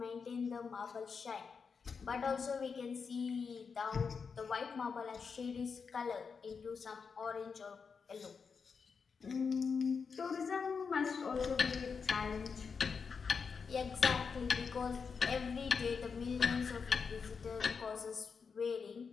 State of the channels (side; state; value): right; quieter; 5.6 dB